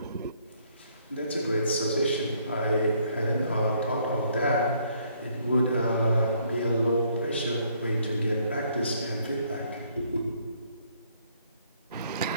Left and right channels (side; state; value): both; inverted; correlation -0.66